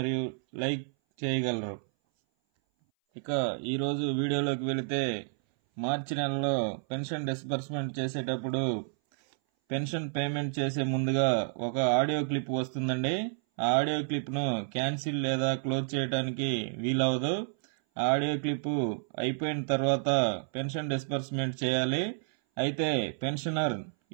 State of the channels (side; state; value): left; silent; 58 dB below the other